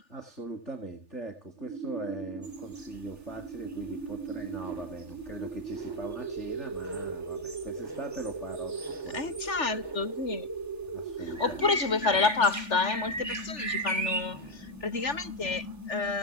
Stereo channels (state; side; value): late; right; 3.4 ms